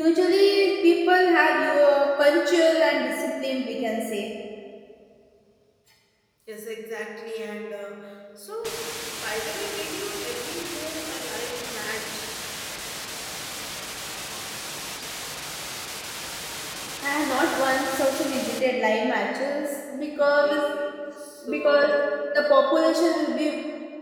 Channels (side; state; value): both; identical; correlation 1.00